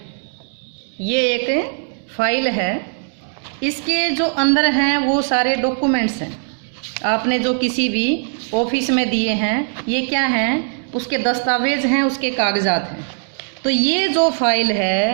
ये एक फाइल है। इसके जो अंदर हैं वो सारे डॉक्यूमेंट्स हैं आपने जो किसी भी ऑफिस में दिए हैं। ये क्या हैं? उसके दस्तावेज हैं, उसके कागजात हैं। तो ये जो फाइल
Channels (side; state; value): left; silent; 66 dB below the other